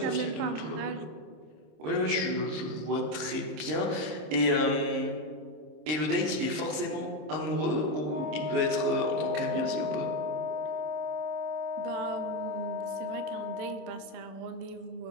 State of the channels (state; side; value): late; left; 26 ms